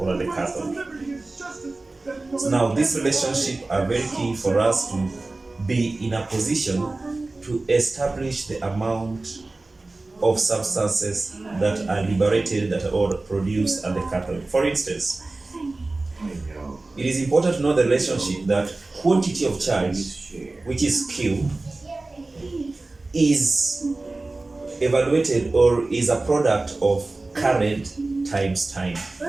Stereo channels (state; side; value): quieter; left; 3.2 dB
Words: at the cathode. So now, these relationships are very key for us to be in a position to establish the amount of substances that are liberated or produced at the cathode. For instance, it is important to know the relationship that quantity of charge, which is Q, is evaluated or is a product of current times time.